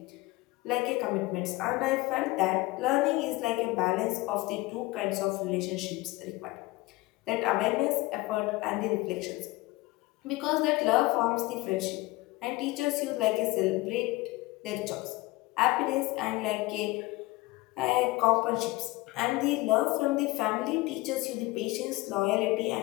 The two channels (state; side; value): quieter; right; 20.6 dB